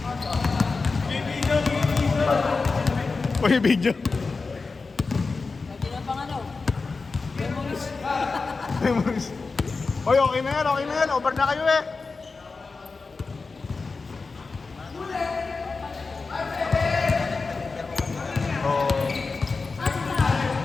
Uy, video. Lagi na pang ano. Memories. Memories. Uy, okay na yan, okay na yan. Over na kayo eh.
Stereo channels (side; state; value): right; quieter; 4.2 dB